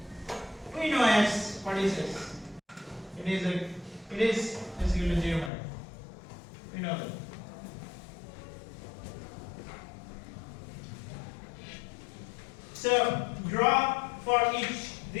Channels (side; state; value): right; drops out; at 5.5 s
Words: We know S. What is S? It is equal to 0. We know that. So draw for each.